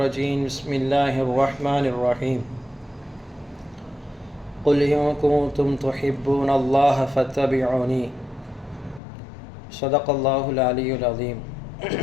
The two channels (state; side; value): drops out; right; at 9.0 s